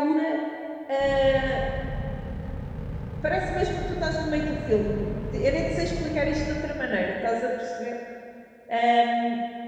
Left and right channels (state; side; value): identical; both; correlation 1.00